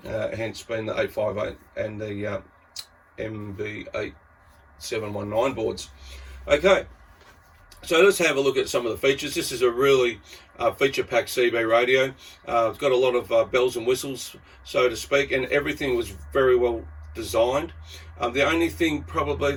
hence being the 858 and the MB8719 boards. Okay, so let's have a look at some of the features. This is a really feature-packed CB radio. It's got a lot of bells and whistles, so to speak, and everything was very well designed. The only thing probably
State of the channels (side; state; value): both; identical; correlation 1.00